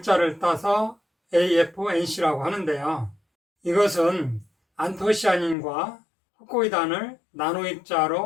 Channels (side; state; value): right; drops out; at 5.6 s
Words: 따서 AFNC라고 하는데요. 이것은 안토시아닌과 후코이단을 나노